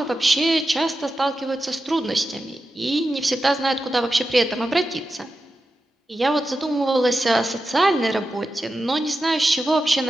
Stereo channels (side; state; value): both; normal; correlation 0.91